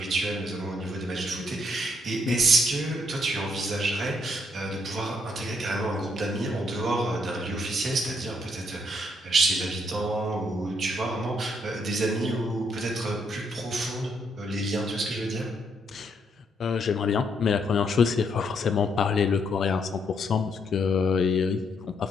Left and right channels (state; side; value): normal; both; correlation 0.73